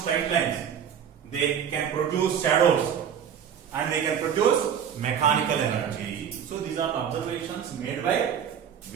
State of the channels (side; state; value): left; quieter; 8.4 dB